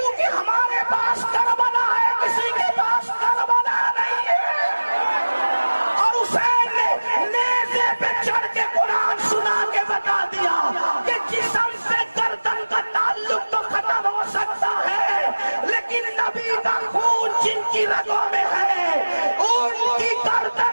ہمارے پاس کربلا ہے، کسی کے پاس کربلا نہیں ہے۔ اور حسین نے نیزے پہ چڑھ کے قرآن سنا کے بتا دیا کہ جسم سے گردن کا تعلق تو ختم ہو سکتا ہے، لیکن نبی کا خون جن کی رگوں میں ہے ان کی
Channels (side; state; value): both; inverted; correlation -1.00